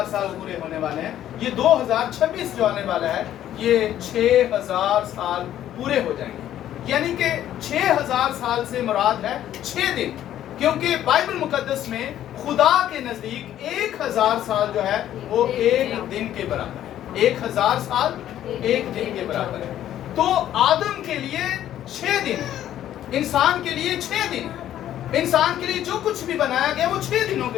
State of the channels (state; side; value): quieter; right; 11.8 dB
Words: साल पूरे होने वाले हैं। ये 2026 जो आने वाला है ये 6000 साल पूरे हो जाएंगे। यानी कि 6000 साल से मुराद है 6 दिन, क्योंकि बाइबल मुकद्दस में खुदा के नजदीक 1000 साल जो है वो एक दिन के बराबर है। 1000 साल एक दिन के बराबर है। तो आदम के लिए 6 दिन है, इंसान के लिए 6 दिन है। इंसान के लिए जो कुछ भी बनाया गया वो 6 दिनों